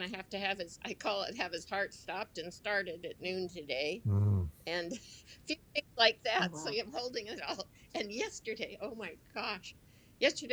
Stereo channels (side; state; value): both; identical; correlation 1.00